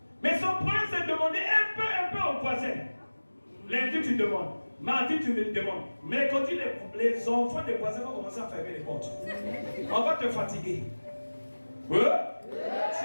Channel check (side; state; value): both; inverted; correlation -1.00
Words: Mais son problème, c'est de demander un peu aux voisins. Lundi, tu demandes. Mardi, tu me demandes. Mercredi, les enfants des voisins vont commencer à fermer les portes. On va te fatiguer.